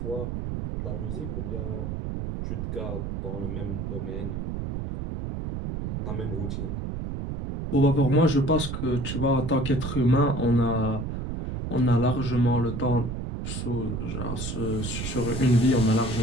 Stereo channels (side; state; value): right; noise; rumble, 4 dB below the sound